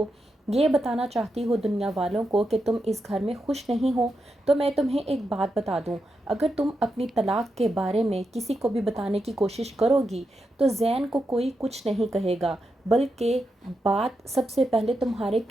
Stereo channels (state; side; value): normal; both; correlation 0.86